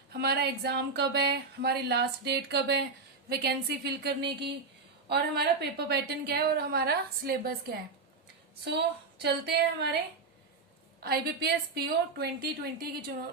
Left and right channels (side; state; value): left; quieter; 4.2 dB